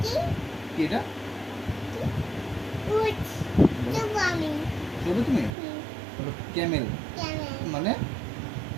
কি? কি এটা উট, দেবো আমি, বলো তুমি বলো ক্যামেল camel, মানে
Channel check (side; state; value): left; drops out; at 5.5 s